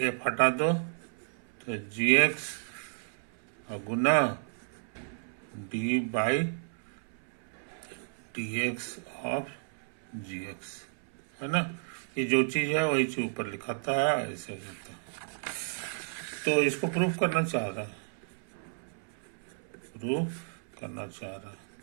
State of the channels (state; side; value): silent; left; 56 dB below the other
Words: एफ हटा दो तो जी एक्स और गुना D by D X of G X, है ना। ये जो चीज है वही चीज ऊपर लिखाता है, ऐसे हो जाता है। तो इसको प्रूफ करना चाह रहा है,